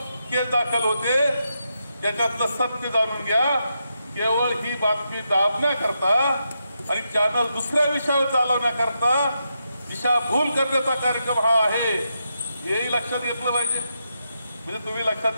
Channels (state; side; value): inverted; both; correlation -0.84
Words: केस दाखल होते, त्याच्यातलं सत्य जाणून घ्या. केवळ ही बातमी दाबण्याकरता आणि चॅनल दुसऱ्या विषयावर चालवण्याकरता दिशाभूल करण्याचा कार्यक्रम हा आहे, हेही लक्षात घेतलं पाहिजे. म्हणजे तुम्ही लक्षात